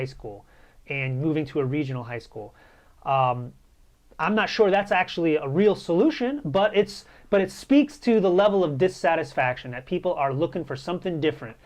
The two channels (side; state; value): both; identical; correlation 1.00